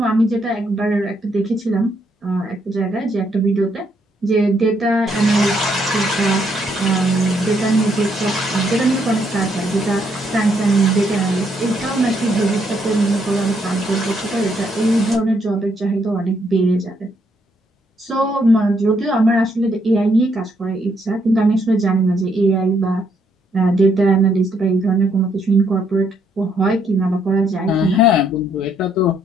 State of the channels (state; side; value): normal; both; correlation 0.73